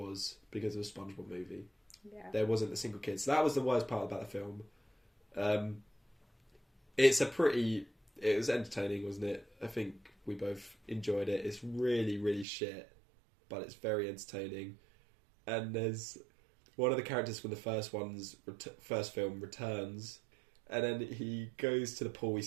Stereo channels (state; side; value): drops out; left; at 12.5 s